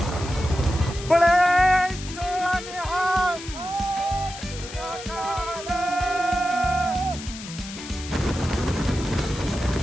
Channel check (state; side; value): noise; left; hiss, 12 dB below the sound